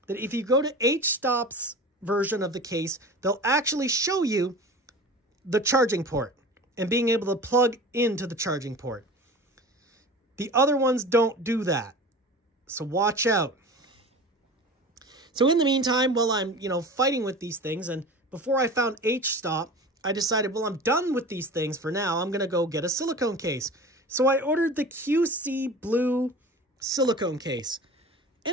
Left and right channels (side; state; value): both; normal; correlation 0.36